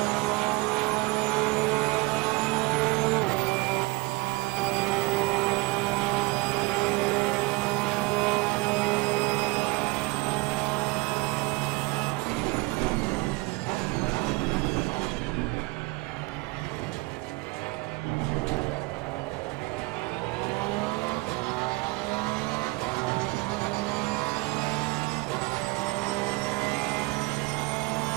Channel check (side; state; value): left; quieter; 24.4 dB